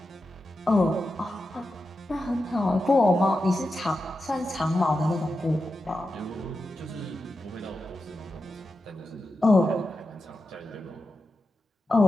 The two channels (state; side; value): normal; both; correlation 0.90